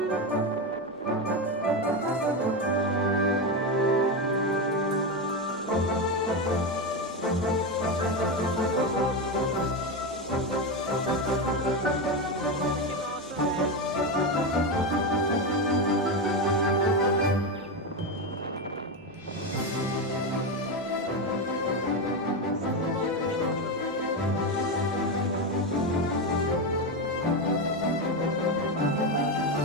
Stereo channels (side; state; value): both; normal; correlation 0.13